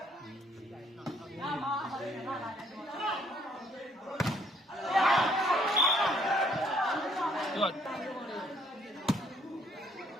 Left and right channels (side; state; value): both; normal; correlation 0.65